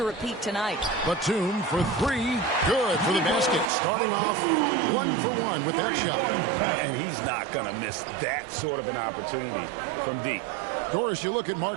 repeat tonight? Batum for 3. Good for the basket. Starting off 1 for 1 with that shot. And he's not going to miss that sort of an opportunity from deep. Doris, you look at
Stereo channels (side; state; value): left; drops out; at 3.7 s